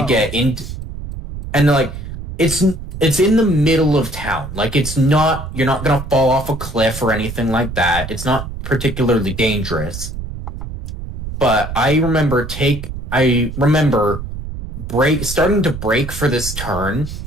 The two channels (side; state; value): right; noise; rumble, 8 dB below the sound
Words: get into, and like it's in the middle of town. Like you're not gonna fall off a cliff or anything like that. It's not particularly dangerous. But I remember starting to brake for this turn